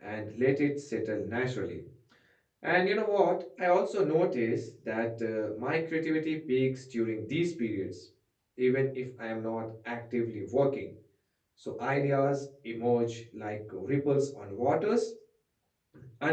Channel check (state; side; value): identical; both; correlation 1.00